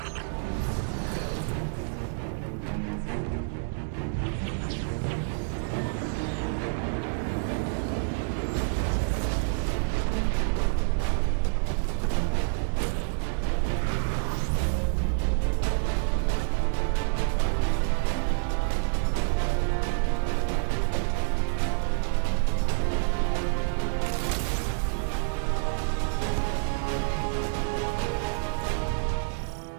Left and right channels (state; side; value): silent; left; digital silence